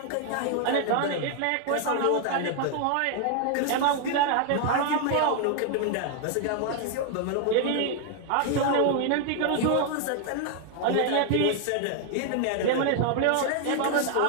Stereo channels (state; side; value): different; both; correlation 0.00